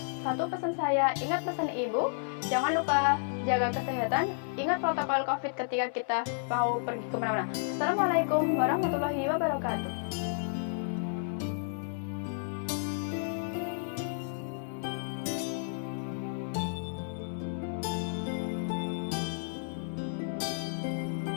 Satu pesan saya, ingat pesan ibu, jangan lupa jaga kesehatan, ingat protokol COVID ketika kita mau pergi kemana-mana. Assalamualaikum warahmatullahi wabarakatuh.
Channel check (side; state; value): right; silent; 57 dB below the other